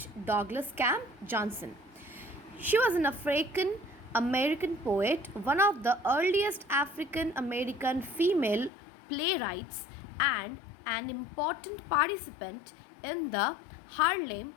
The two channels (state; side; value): drops out; right; at 8.7 s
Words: Douglas Camp Johnson. She was an African American poet, one of the earliest African American female playwrights, and an important participant in the Harlem